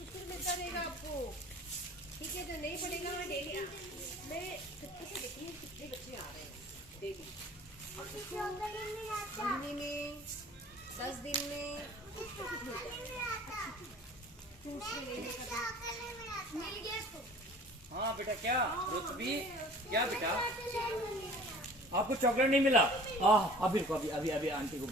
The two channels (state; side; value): normal; both; correlation 0.46